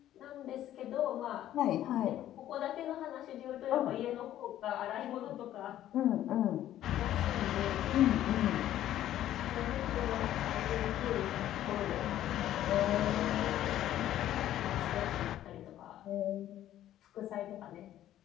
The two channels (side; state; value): right; quieter; 12.5 dB